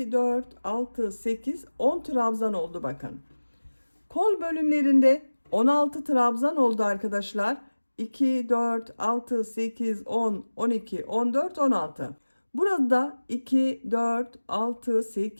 4, 6, 8, 10 trabzan oldu bakın. Kol bölümlerinde 16 trabzan oldu arkadaşlar. 2, 4, 6, 8, 10, 12, 14, 16. Burada 2, 4, 6,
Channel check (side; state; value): both; inverted; correlation -1.00